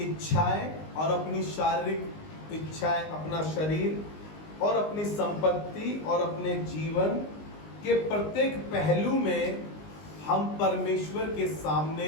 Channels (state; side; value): late; right; 19 ms